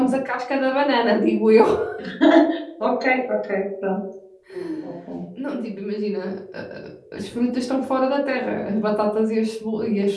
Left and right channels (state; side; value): identical; both; correlation 1.00